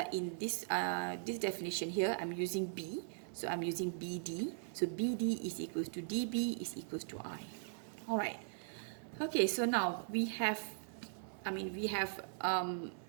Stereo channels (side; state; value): left; silent; 51 dB below the other